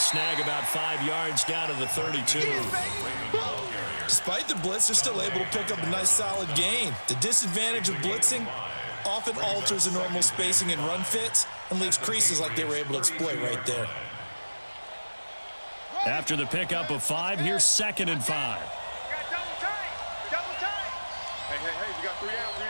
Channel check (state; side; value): inverted; both; correlation -1.00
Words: about 5 yards down to the 32. Despite the blitz, they're still able to pick up a nice solid gain. The disadvantage of blitzing often alters the normal spacing and run fits and leaves creases like they were able to exploit right there. After the pickup of 5, here's 2nd and 5. Got double tight. Double tight. Hey, we got 3 down, 3